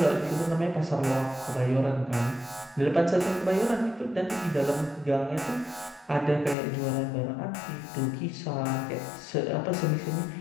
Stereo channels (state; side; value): drops out; right; at 6.6 s